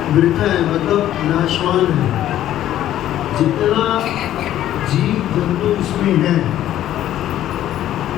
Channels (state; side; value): quieter; right; 12.4 dB